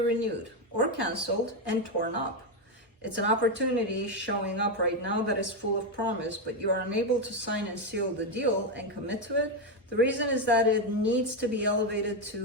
or canceled and torn up. It's an opportunity showing up right now that is full of promise, but you are unable to sign and seal the deal and commit to it. The reason is that it needs to be elevated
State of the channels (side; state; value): both; normal; correlation 0.07